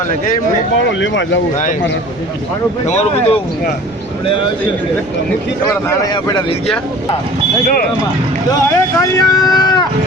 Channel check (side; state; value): right; noise; rumble, 24 dB below the sound